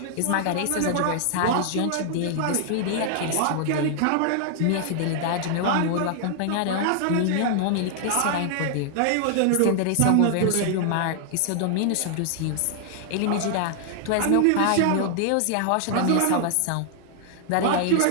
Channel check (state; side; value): different; both; correlation 0.00